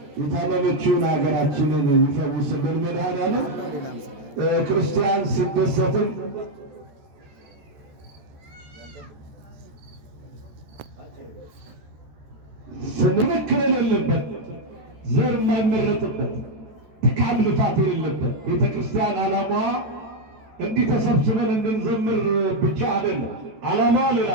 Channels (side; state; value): left; late; 14 ms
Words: የታመመችውን ሀገራችንን ይፈውስልን። መድኃኔዓለም ክርስቲያን ሲደሰትም ስንክል የሌለበት ዘር የማይመረጥበት ድካም ልፋት የሌለበት ቤተ ክርስቲያን ዓላማዋ እንዲህ ተሰብስበን እንድንዘምር ብቻ አይደለም። ዓላማዋ ሌላ